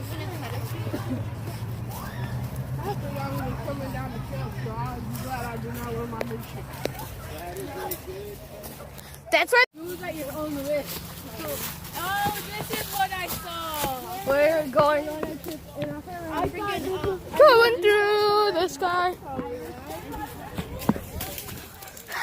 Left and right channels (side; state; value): both; identical; correlation 1.00